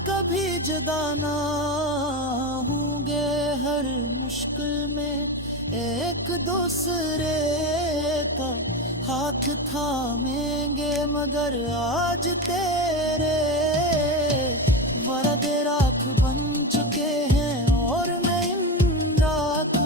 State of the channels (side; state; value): both; normal; correlation 0.19